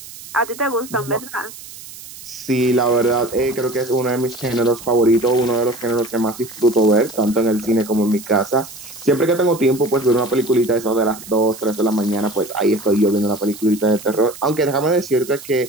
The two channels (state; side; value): noise; right; hiss, 16 dB below the sound